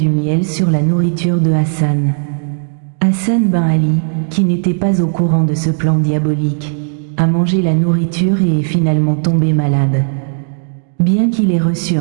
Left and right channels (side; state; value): left; silent; digital silence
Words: miel sur la nourriture de Hassan. Hassan ben Ali, qui n'était pas au courant de ce plan diabolique, a mangé la nourriture et est finalement tombé malade. Bien qu'il ait reçu